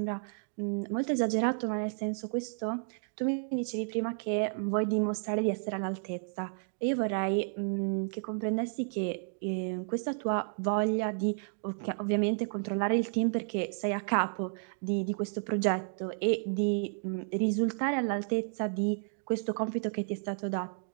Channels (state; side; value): silent; left; digital silence